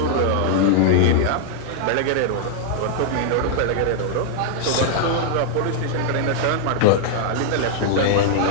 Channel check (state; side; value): different; both; correlation -0.01